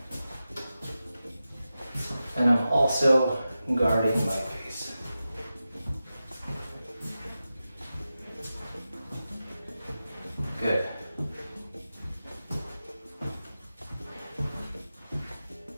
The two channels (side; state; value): both; inverted; correlation -0.92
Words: And I'm also guarding my face. Good.